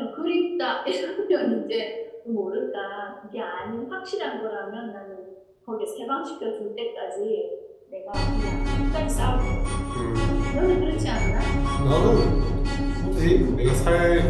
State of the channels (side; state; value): both; identical; correlation 1.00